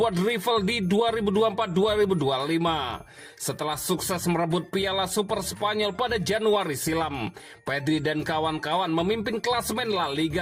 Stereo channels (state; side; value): identical; both; correlation 1.00